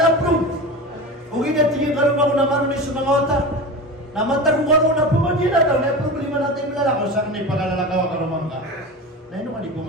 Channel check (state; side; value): normal; both; correlation 0.28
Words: approve. Ug tingin karon ako na maron sa mga otak. Namantag ko karon na pumagina daw na problema natin lalakaw sa kanay pagkalalakaw karon man ka. Naino ka di ko